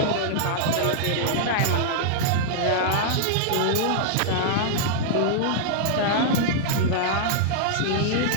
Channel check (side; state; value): both; different; correlation -0.01